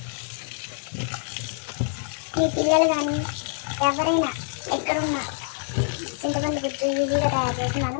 మీ పిల్లలు కానీ ఎవరైనా ఎక్కడున్నా చింతపండు గుజ్జు ఈజీగా తయారు చేసి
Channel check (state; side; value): silent; right; 57 dB below the other